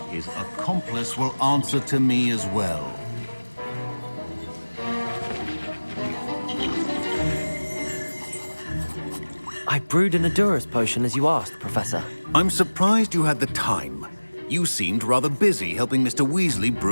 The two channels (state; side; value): inverted; both; correlation -1.00